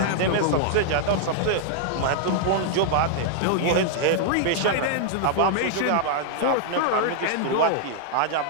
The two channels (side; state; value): both; different; correlation -0.01